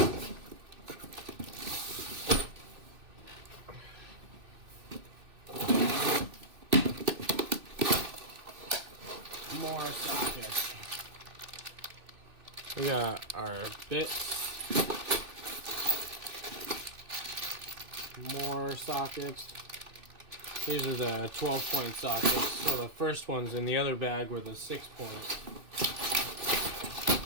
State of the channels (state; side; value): late; left; 2.6 ms